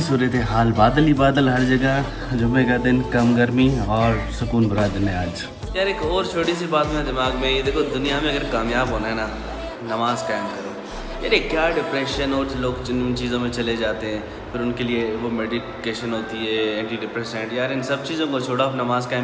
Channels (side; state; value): both; identical; correlation 1.00